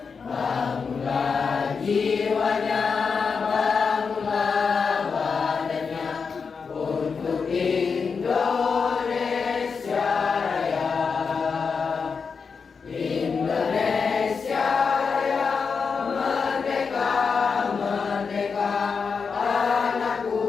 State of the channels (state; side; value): quieter; right; 5.5 dB